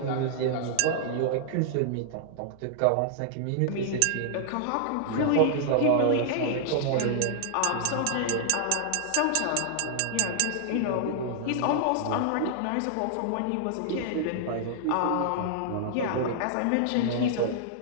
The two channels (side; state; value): both; different; correlation -0.01